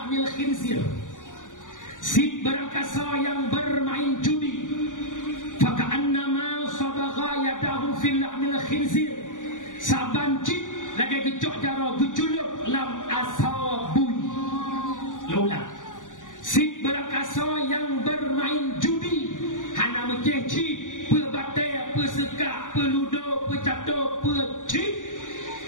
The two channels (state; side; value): late; right; 0.87 ms